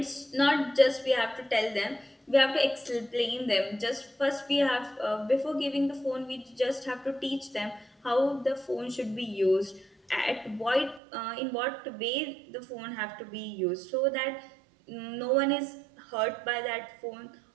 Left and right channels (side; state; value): left; drops out; at 11.0 s